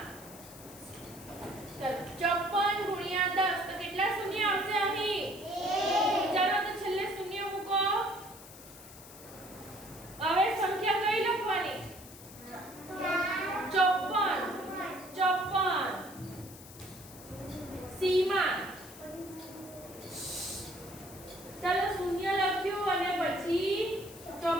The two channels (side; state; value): left; noise; hiss, 17 dB below the sound